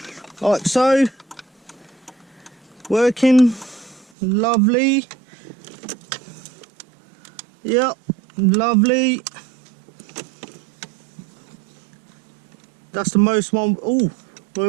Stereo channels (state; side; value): drops out; left; at 4.0 s